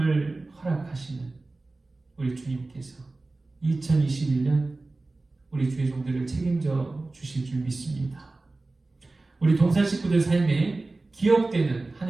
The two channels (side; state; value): left; quieter; 3.2 dB